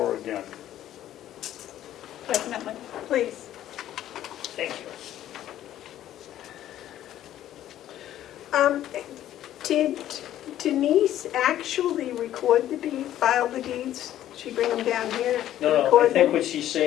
her again. Definitely. Please. Thank you. Did Denise actually record the deed, file the deeds? She bring them down here to No, I record think them? what she's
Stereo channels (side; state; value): right; quieter; 12.4 dB